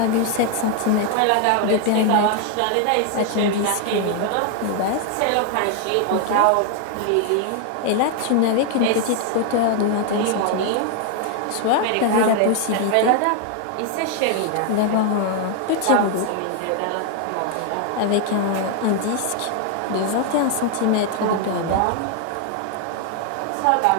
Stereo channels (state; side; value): different; both; correlation 0.00